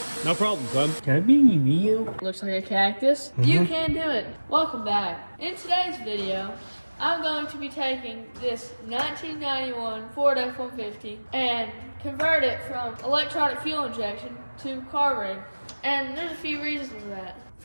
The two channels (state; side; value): inverted; both; correlation -1.00